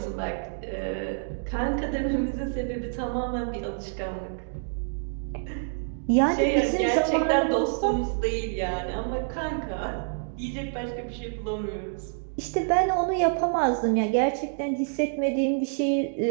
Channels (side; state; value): left; silent; digital silence